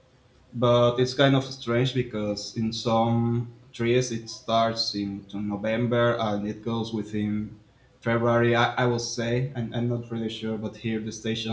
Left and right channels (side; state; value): both; identical; correlation 1.00